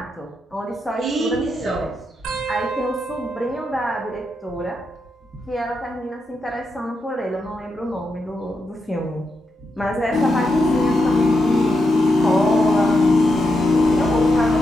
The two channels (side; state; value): both; normal; correlation 0.84